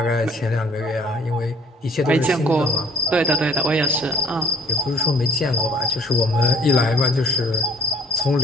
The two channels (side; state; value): both; normal; correlation 0.56